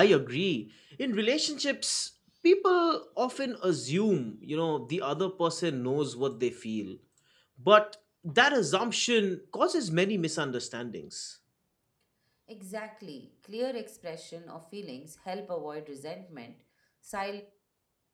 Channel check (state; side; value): identical; both; correlation 1.00